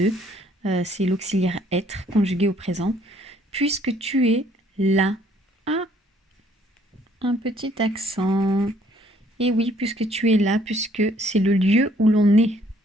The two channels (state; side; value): normal; both; correlation 0.63